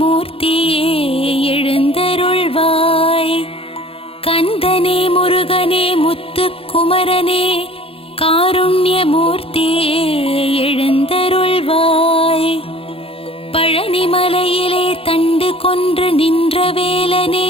எழுந்தருள்வாய். கந்தனே முருகனே முத்துக்குமரனே காருண்யமூர்த்தியே எழுந்தருள்வாய். பழனிமலையிலே தண்டு கொன்று நின்ற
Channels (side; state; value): right; late; 0.27 ms